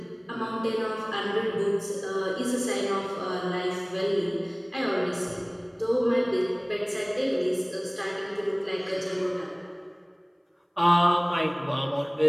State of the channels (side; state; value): both; identical; correlation 1.00